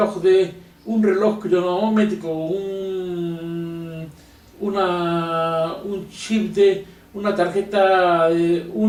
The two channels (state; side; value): identical; both; correlation 1.00